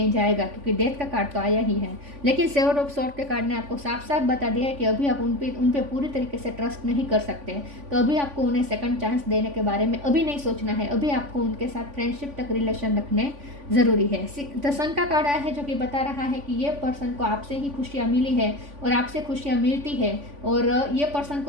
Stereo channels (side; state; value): left; late; 3.5 ms